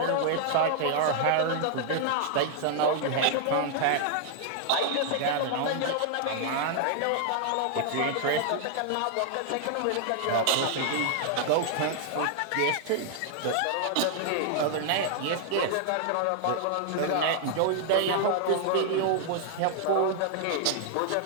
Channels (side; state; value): both; different; correlation -0.01